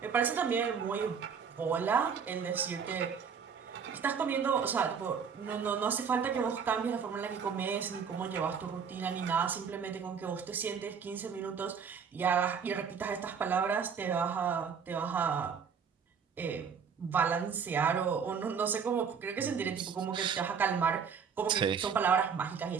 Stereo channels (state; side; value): quieter; left; 6.6 dB